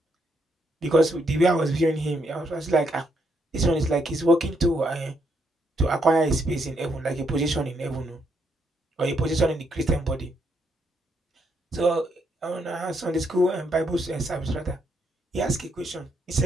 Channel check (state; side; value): normal; both; correlation 0.75